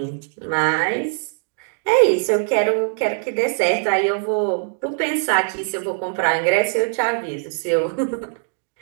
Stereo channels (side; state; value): left; silent; digital silence